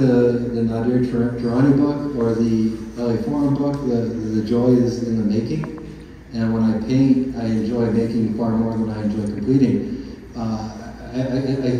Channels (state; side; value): identical; both; correlation 1.00